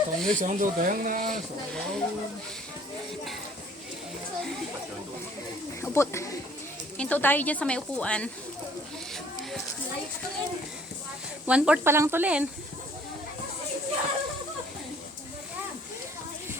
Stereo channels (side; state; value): both; normal; correlation 0.57